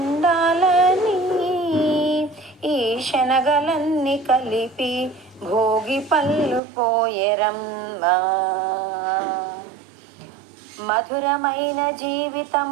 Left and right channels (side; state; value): left; drops out; at 6.6 s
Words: ఈ శనగలన్నీ కలిపి భోగి పళ్ళు పోయేరమ్మా. మధురమైన